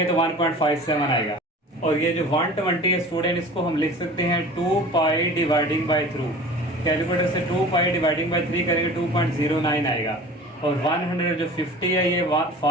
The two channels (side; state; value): both; normal; correlation 0.41